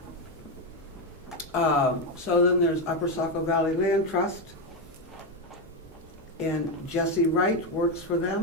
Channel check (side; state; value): both; normal; correlation 0.08